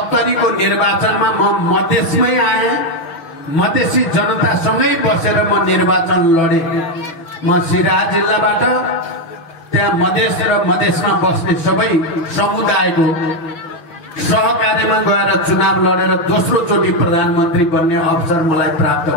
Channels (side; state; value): right; late; 6.1 ms